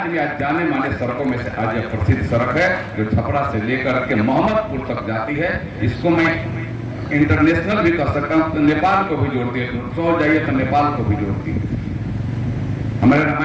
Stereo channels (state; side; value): identical; both; correlation 1.00